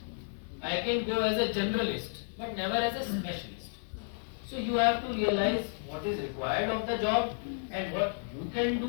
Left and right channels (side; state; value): right; silent; digital silence